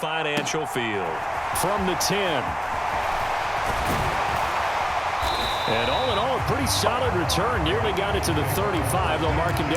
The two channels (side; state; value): both; identical; correlation 1.00